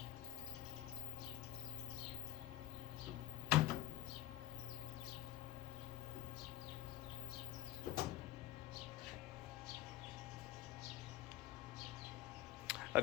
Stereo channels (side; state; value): right; quieter; 15.9 dB